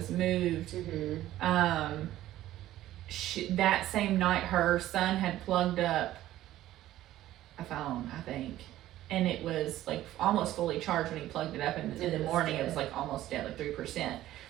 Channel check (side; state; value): left; quieter; 14.2 dB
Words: moved, that same night her son had plugged up a phone, I think, and it was like almost fully charged when he plugged it up, and in the morning it was like almost dead, like